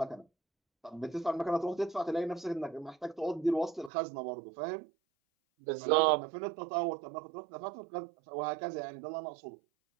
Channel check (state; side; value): drops out; left; at 3.9 s